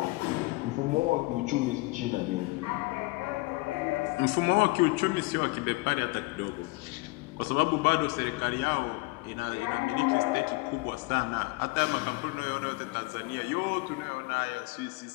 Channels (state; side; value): quieter; right; 23.7 dB